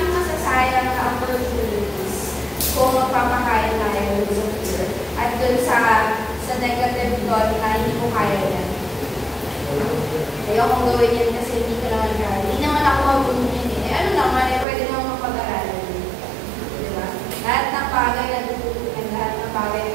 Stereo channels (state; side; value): drops out; left; at 14.7 s